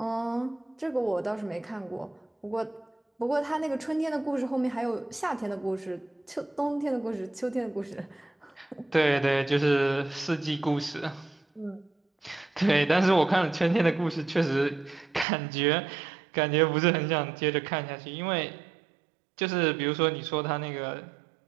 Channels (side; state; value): left; drops out; at 15.2 s